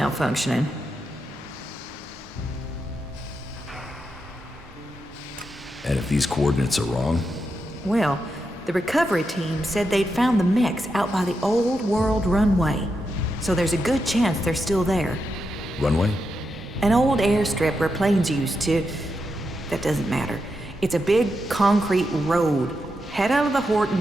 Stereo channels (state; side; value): normal; both; correlation 0.85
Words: And if these coordinates are wrong? Well, the recovery team said they'd found the mechs out by the old world runway. So there's a good chance they're still there. Runway? An old airstrip where planes used to... That doesn't matter. It's a big concrete road. Head out of the Horde